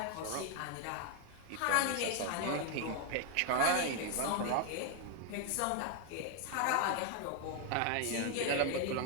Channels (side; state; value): both; different; correlation 0.01